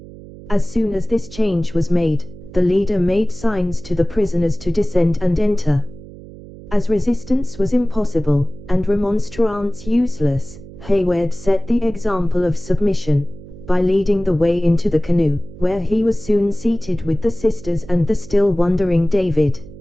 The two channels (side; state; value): right; noise; hum, 17 dB below the sound